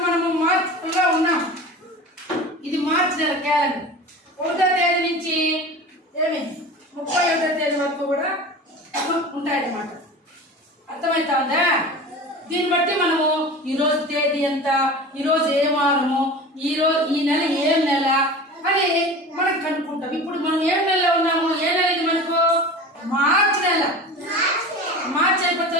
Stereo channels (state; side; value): normal; both; correlation 0.35